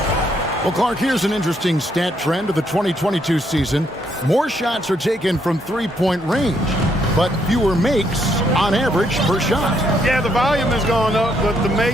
Well, Clark, here's an interesting stat trend of the 2022 season. More shots are taken from 3-point range, but fewer makes on average per shot. Yeah, the volume has gone up, but the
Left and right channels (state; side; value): normal; both; correlation 0.73